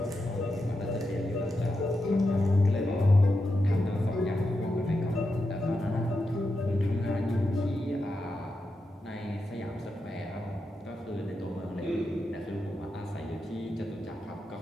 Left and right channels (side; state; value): both; normal; correlation 0.87